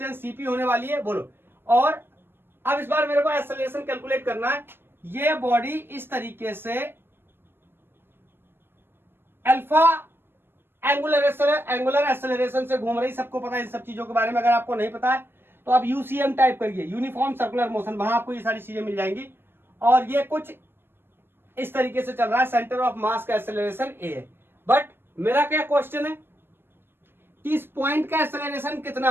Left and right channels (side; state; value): left; late; 0.10 ms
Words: सीपी होने वाली है। बोलो और अब इस बार मेरे को एक्सेलरेशन कैलकुलेट करना है। ये बॉडी इस तरीके से अल्फा एंगुलर एक्सेलरेशन से घूम रही, सबको पता है इन सब चीजों के बारे में। अगर आपको नहीं पता है तो आप यूसीएम टाइप करिए, यूनिफॉर्म सर्कुलर मोशन, वहां आपको ये सारी चीजें मिल जाएंगी। और ये कुछ इस तरीके से चल रहा है, सेंटर ऑफ मास का एक्सेलरेशन ए है। बट मेरा क्या क्वेश्चन है कि इस पॉइंट का एक्सेलरेशन कितना